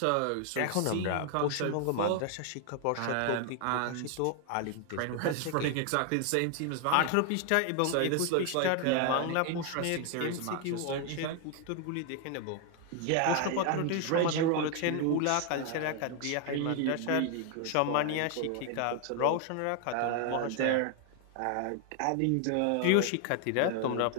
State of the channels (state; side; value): different; both; correlation 0.00